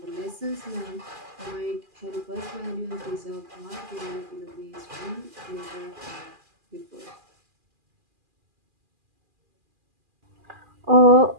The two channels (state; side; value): late; left; 2.4 ms